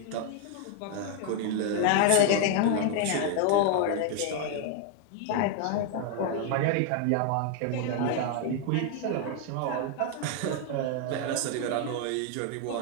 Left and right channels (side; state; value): both; different; correlation 0.00